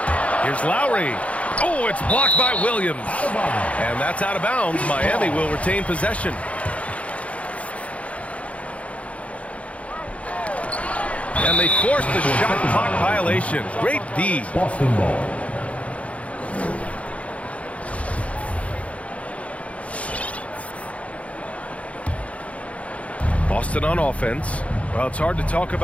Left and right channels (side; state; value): right; late; 0.064 ms